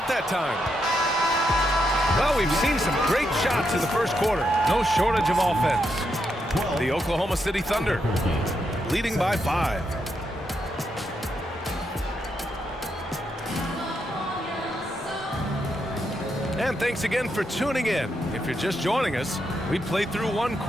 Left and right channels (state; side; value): normal; both; correlation 0.81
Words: that time. Well, we've seen some great shots in the first quarter. No shortage of offense. The Oklahoma City Thunder leading by 5. And thanks again for tuning in. If you're just joining us, we played through 1